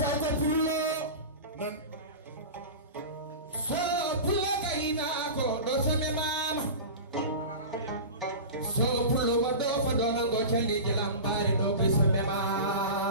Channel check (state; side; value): inverted; both; correlation -0.30